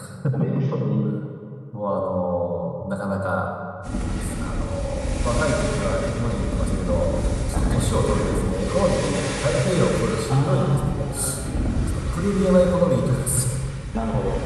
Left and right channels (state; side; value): identical; both; correlation 1.00